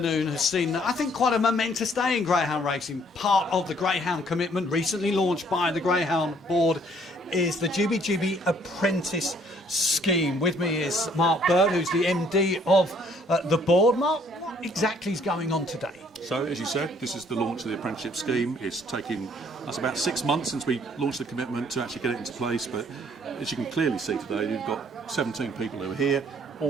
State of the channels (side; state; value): both; normal; correlation 0.62